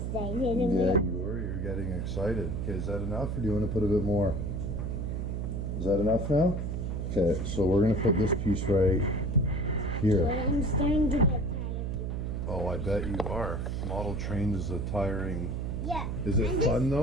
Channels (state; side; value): noise; right; hum, 2 dB below the sound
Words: Yeah, you were. You're getting excited. Okay, is that enough or do you want to put a bit more? Is that enough now? Okay, so we're going to put this piece right here. I'm starting to get tired of doing it. Oh, I bet you are. Model train is a tiring... Yeah. Is it fun